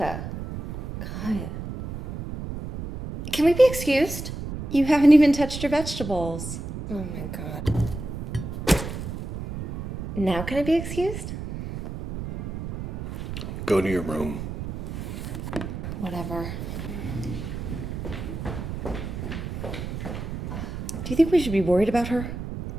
God. Can we be excused? You haven't even touched your vegetables. Oh my God. Now can I be excused? Go to your room. Whatever. Do you think we should be worried about her?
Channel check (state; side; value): noise; right; rumble, 7 dB below the sound